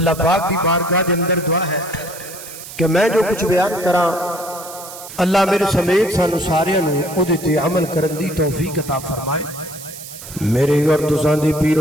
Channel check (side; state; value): right; noise; hiss, 14 dB below the sound